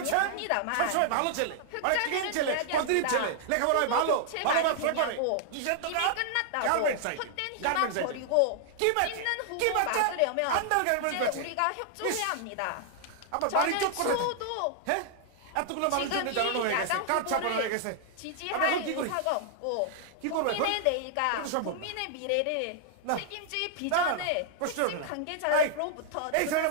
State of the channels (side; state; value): both; different; correlation -0.01